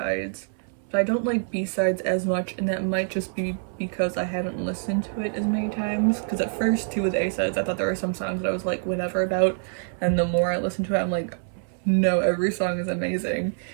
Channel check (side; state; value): left; silent; 61 dB below the other